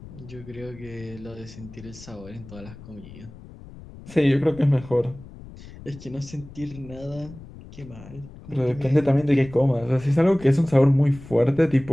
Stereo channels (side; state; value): left; noise; rumble, 17 dB below the sound